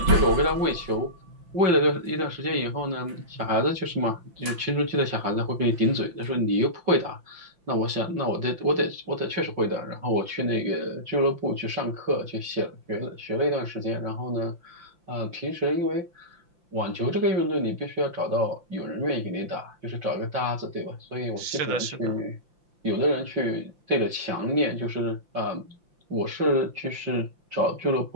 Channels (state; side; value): late; left; 5.8 ms